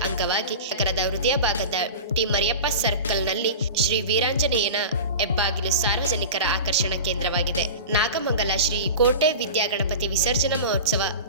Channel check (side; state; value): both; inverted; correlation -0.31